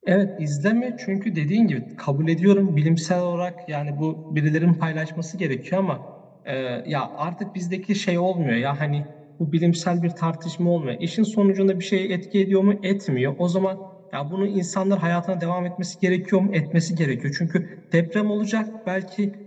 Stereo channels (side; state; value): both; identical; correlation 1.00